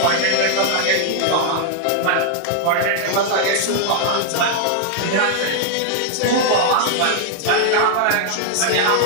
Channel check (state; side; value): different; both; correlation -0.01